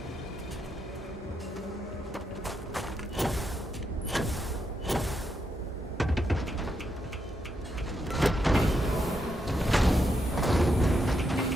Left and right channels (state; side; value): normal; both; correlation 0.81